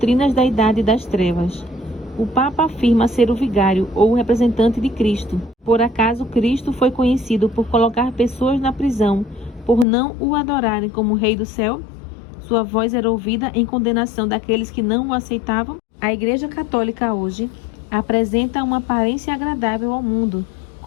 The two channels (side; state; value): right; drops out; at 9.9 s